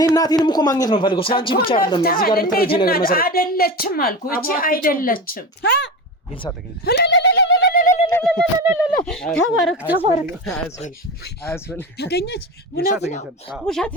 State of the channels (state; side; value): normal; both; correlation 0.25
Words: እናቴንም እኮ ማግኘት ነው ፈልገው ስላንቺ ብቻ አይደለም እዚህ ጋር ተረጂ ነገር መሰረት አይደለችም አልኩ እቺ አይደለችም ይልሳ ተገኘ ተባረክ አያስበል ተገኘች ውሸት